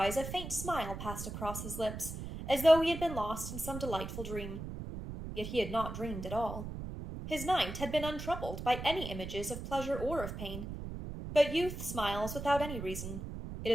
a faint smile passed across his lips, as though he had been lost in some delightful dream. Yet he had not dreamed at all. His night had been untroubled by any images of pleasure or of pain. But youth smiles without any reason. It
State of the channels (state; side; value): noise; right; rumble, 7 dB below the sound